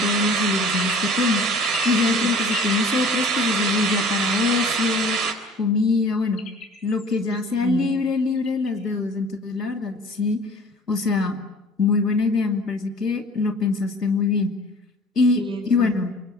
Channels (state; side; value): normal; both; correlation 0.47